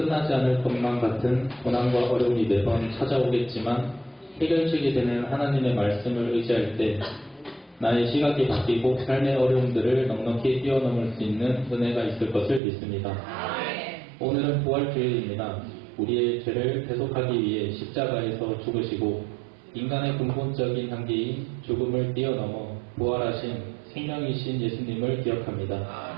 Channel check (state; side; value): drops out; left; at 12.6 s